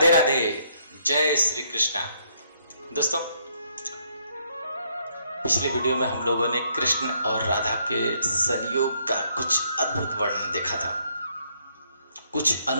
राधे। जय श्री कृष्णा। दोस्तों, पिछले वीडियो में हम लोगों ने कृष्ण और राधा के संयोग का कुछ अद्भुत वर्णन देखा था, कुछ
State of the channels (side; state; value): both; inverted; correlation -0.70